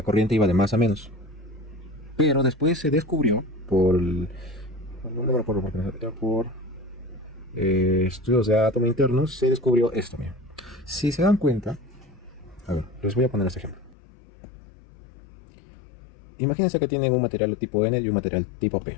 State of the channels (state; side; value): drops out; right; at 14.0 s